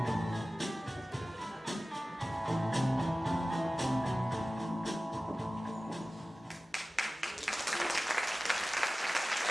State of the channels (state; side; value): normal; both; correlation 0.97